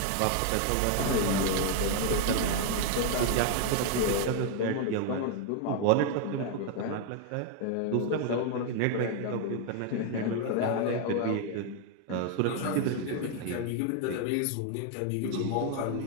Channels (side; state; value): both; different; correlation 0.00